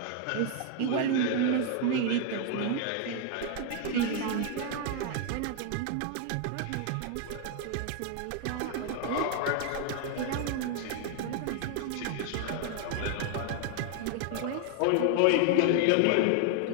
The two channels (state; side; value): different; both; correlation 0.00